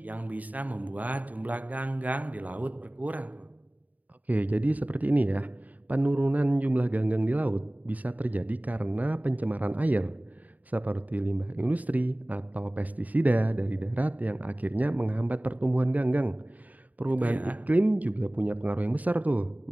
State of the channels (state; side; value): late; left; 0.075 ms